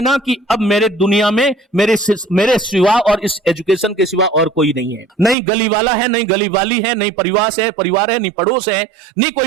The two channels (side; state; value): left; drops out; at 5.4 s